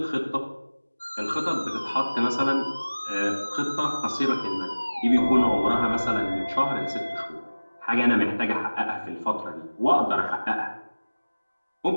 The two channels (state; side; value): inverted; both; correlation -1.00